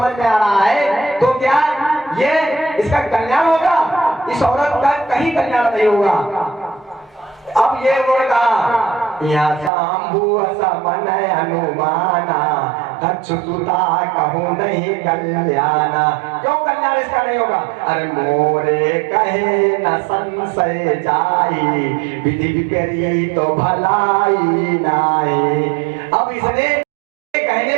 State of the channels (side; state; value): left; drops out; at 9.7 s